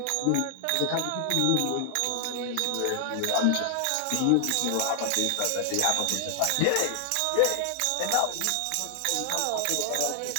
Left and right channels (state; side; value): different; both; correlation 0.00